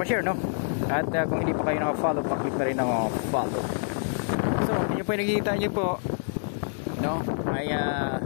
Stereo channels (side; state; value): right; silent; digital silence